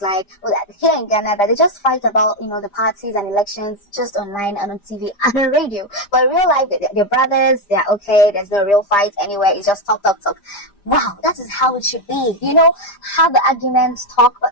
like, well, that here in Ghana, that they just fight about, the parties and elections just online and on TV and on radio. But in real life, they're brothers, they're okay, there's no real fight anywhere, it's just talk, talk, talk. Wow, that is how it should be. Have the arguments, talk, but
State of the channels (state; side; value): late; right; 5.0 ms